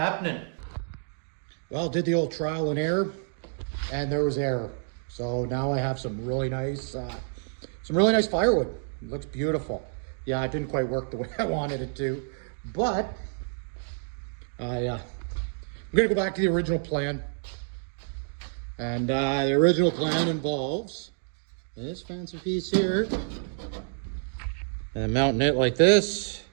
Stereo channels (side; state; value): left; silent; digital silence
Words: Well, did the old trial and error, and there was error. So now I have some really nice firewood. It looks beautiful. Yeah, it didn't quite work the way I wanted it to, but I I'm gonna go back to the original plan. And the original plan involves this fancy piece here. And then mounting it like this.